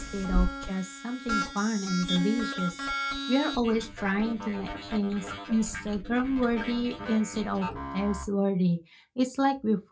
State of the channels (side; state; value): both; identical; correlation 1.00